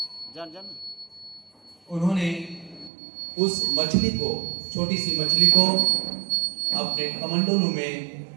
उन्होंने उस मछली को, छोटी सी मछली को अपने कमंडलू में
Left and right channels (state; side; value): drops out; left; at 2.9 s